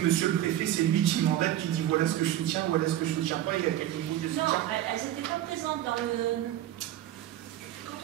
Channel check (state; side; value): quieter; left; 12.7 dB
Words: le préfet, c'est lui qui mandate, qui dit voilà ce que je soutiens, voilà ce que je ne soutiens pas, il y a quel niveau de soutien. Non, elles n'étaient pas présentes dans le... Quand